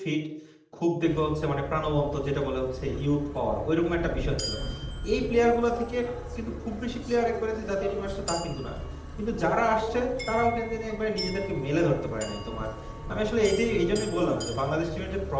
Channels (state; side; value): identical; both; correlation 1.00